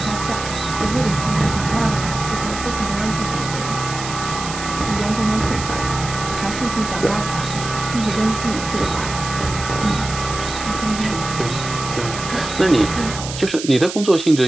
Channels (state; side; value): noise; right; hiss, 9 dB below the sound